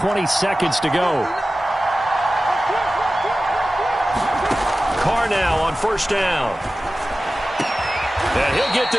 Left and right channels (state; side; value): normal; both; correlation 0.95